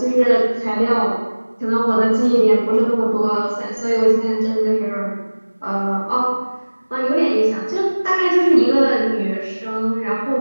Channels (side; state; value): both; inverted; correlation -1.00